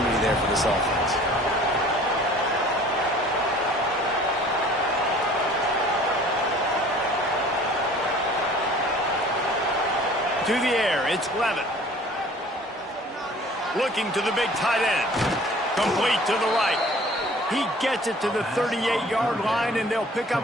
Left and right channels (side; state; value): both; normal; correlation 0.49